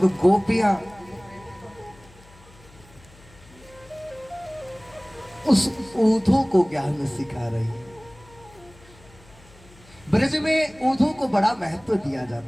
गोपियां उस ऊधो को ज्ञान सिखा रही है। ब्रज में ऊधो को बड़ा महत्व दिया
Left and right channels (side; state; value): left; noise; hum, 25 dB below the sound